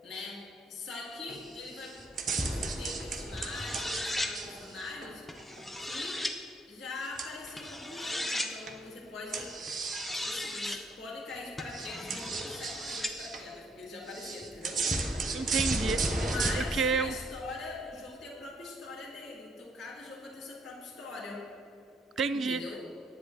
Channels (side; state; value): both; normal; correlation 0.69